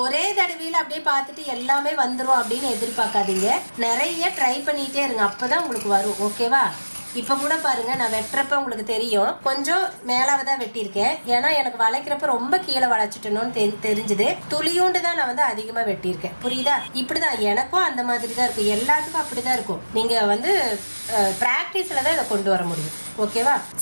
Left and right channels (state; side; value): inverted; both; correlation -1.00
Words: ஒரே தடவையில் அப்படியே பார்த்துட்டு எல்லாமே வந்துடும் அப்படின்னு எதிர்பார்க்காதீங்க. நிறைய ட்ரை பண்ணிகிட்டே இருங்க, அப்போ தான் உங்களுக்கு வரும். ஓகேவா? இப்போ கூட பாருங்க, நான் வெட்டுறப்ப உங்களுக்கு தெரியும் கொஞ்சம் மேலாக தான் வெட்டியிருக்கேன். ஏன்னா எனக்கு வளைக்கிறப்ப ரொம்ப கீழே வளைச்சிட்டணும்னு தெரிஞ்சுது. துளியோண்டு தான் நான் வந்து அதிகமாக வெட்டியிருக்கேன். புரியுதா? இப்படிதான் எனக்கும் அந்த மாதிரி தான் இருக்கும், எல்லாத்துக்கும் அப்படிதான் இருக்கும். நீங்கள் வந்து ப்ராக்டிஸில் தான் இதை கொண்டு வர முடியும். ஓகேவா?